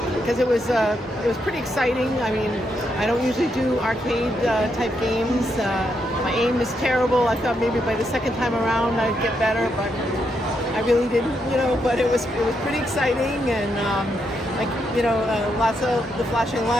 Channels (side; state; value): both; normal; correlation 0.80